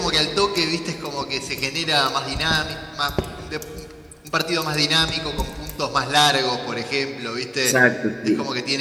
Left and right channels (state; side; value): identical; both; correlation 1.00